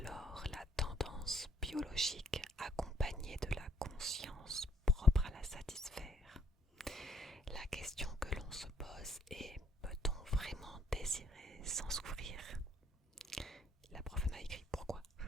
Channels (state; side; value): normal; both; correlation 0.66